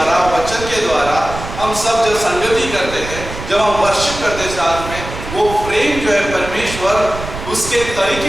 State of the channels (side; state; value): right; noise; rumble, 10 dB below the sound